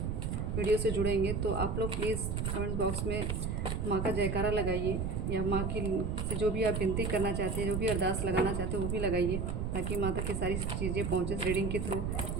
वीडियो से जुड़ेंगे। तो आप लोग प्लीज़ कमेंट बॉक्स में माँ का जयकारा लगाइए या माँ की से जो भी आप विनती करना चाहते हैं, जो भी अरदास लगाना चाहते हैं वो भी लगाइए, ताकि माँ तक की सारी चीज़ें पहुँचे। इस रीडिंग के थ्रू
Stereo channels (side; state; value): right; noise; rumble, 1 dB below the sound